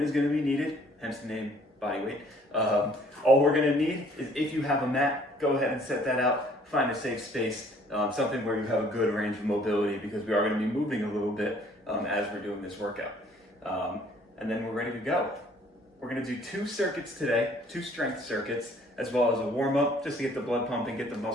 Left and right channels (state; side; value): normal; both; correlation 0.59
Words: is going to be needed, hence the name bodyweight. All we're going to need is, if you have a mat, go ahead and set that out. Find a safe space, something where you have a good range of mobility, because we are going to be moving a little bit as we're doing this workout. And then we're ready to go. We're going to do 2 circuits today, 2 strength circuits, as well as a warm-up just to get the blood pumping, get the